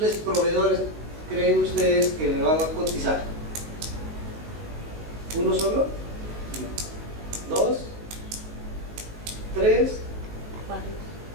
proveedores creen ustedes que le van a cotizar? ¿Uno solo? No. ¿Dos? ¿Tres?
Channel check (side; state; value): left; late; 19 ms